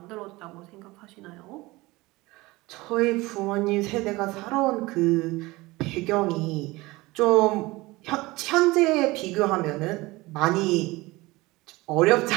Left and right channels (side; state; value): left; quieter; 21.2 dB